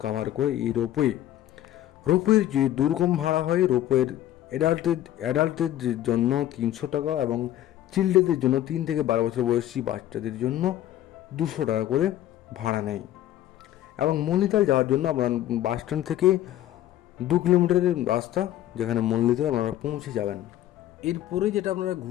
কাভার করে এই রোপওয়ের যে দুর্গম ভাড়া হয়, রোপওয়ের অ্যাডাল্টদের জন্য 300 টাকা এবং চিলড্রেনদের জন্য 3 থেকে 12 বছর বয়সী বাচ্চাদের জন্য 200 টাকা করে ভাড়া নেয়। এবং মল্লিতাল যাওয়ার জন্য আপনার বাস স্ট্যান্ড থেকে 2 কিলোমিটারের রাস্তা, যেখানে মল্লিতাল আপনারা পৌঁছে যাবেন। এরপরে যেটা আপনারা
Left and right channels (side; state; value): right; quieter; 13.0 dB